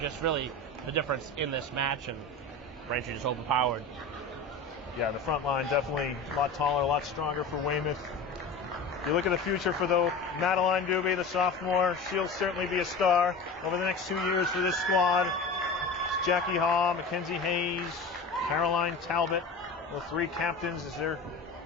just really the difference in this match, and Braintree just overpowered. Yeah, the front line definitely a lot taller, a lot stronger for Weymouth. You look at the future for Madeline Doobie, the sophomore. She'll certainly be a star over the next 2 years for this squad. It's Jackie Haw, Mackenzie Hayes, Caroline Talbot, the three captains as their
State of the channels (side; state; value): right; quieter; 3.5 dB